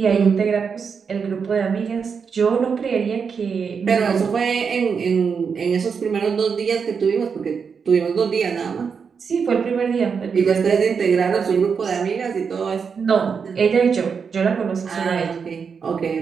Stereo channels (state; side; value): quieter; left; 6.1 dB